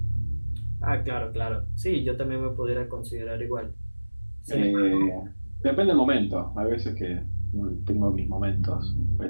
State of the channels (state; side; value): inverted; both; correlation -1.00